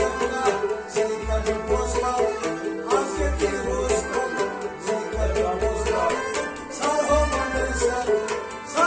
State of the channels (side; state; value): both; identical; correlation 1.00